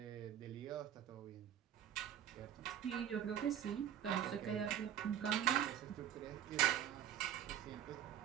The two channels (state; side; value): quieter; left; 10.3 dB